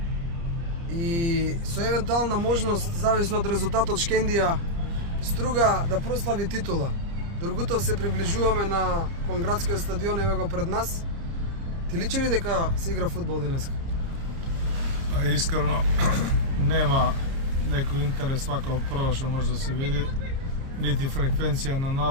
И со евентуална можност, зависно од резултатот, Шкендија Струга да прослави титула. Дургутов се приближуваме на Конградскиот стадион, еве го пред нас. Ти личи ли дека се игра фудбал денеска? Искрено нема некој интерес вака прво што може да се види. Нити фреквенција на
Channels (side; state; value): left; late; 29 ms